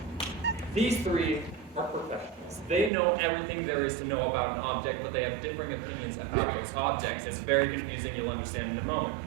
these three are professionals. They know everything there is to know about an object, but they have differing opinions about those objects. It's very confusing, you'll understand in a moment.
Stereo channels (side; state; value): left; drops out; at 2.9 s